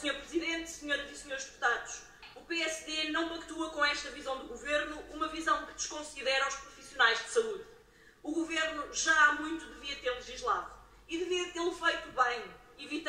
Presidente, Senhoras e Senhores Deputados, o PSD não pactua com esta visão do Governo, uma visão que desconsidera os profissionais de saúde. O Governo já há muito devia ter legislado e devia tê-lo feito bem,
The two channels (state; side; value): identical; both; correlation 1.00